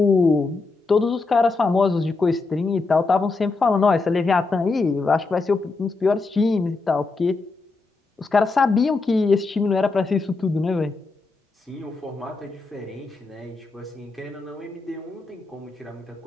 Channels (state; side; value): quieter; right; 3.8 dB